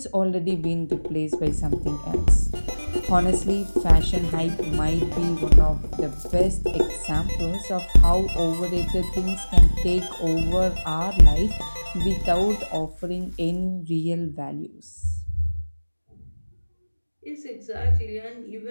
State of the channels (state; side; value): inverted; both; correlation -1.00